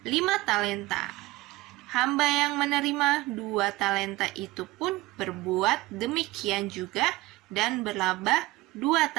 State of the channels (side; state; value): left; quieter; 19.3 dB